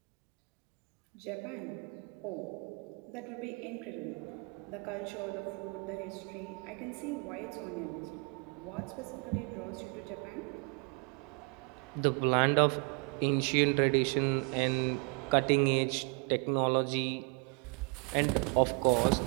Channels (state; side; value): quieter; left; 33.3 dB